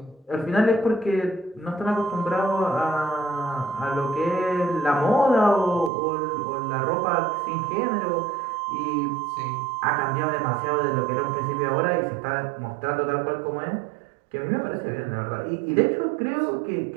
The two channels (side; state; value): left; drops out; at 5.9 s